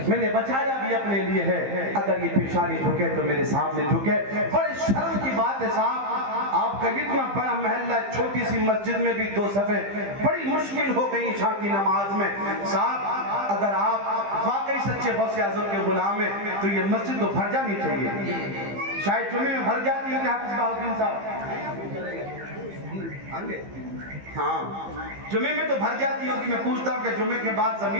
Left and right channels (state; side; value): late; left; 15 ms